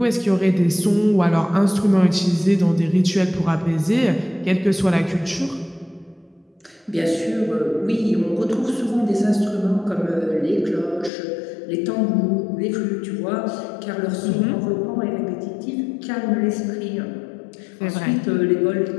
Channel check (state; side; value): drops out; right; at 11.1 s